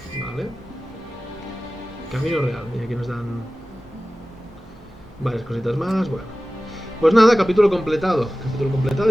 Vale. Camino real. Mira, aquí nos dan varias cositas más. Bueno. Pues nada, capítulo completado. Capítulo completado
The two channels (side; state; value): both; normal; correlation 0.96